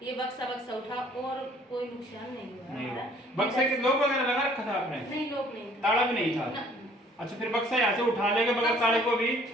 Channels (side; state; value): both; normal; correlation 0.57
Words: ये बक्सा उठा और कोई नुकसान नहीं हुआ हमारा। बक्से के लोग वगैरह लगा रखा था आपने? नहीं, लोग नहीं, ताला भी नहीं था। अच्छा, फिर बक्सा यहाँ से उठा लेंगे बगैर ताले को भी